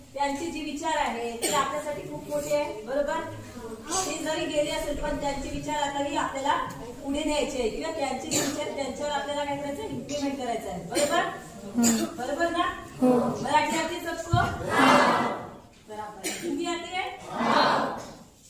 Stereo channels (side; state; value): both; identical; correlation 1.00